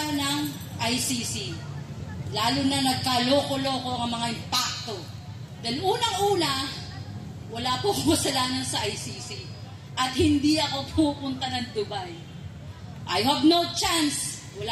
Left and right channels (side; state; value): both; identical; correlation 1.00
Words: ng ICC. Lalo na nagkaloko-loko ang mga impacto. Dahil unang-una, wala po kasalanan sa ICC at hindi ako pupunta ng Dubai. I have no chance.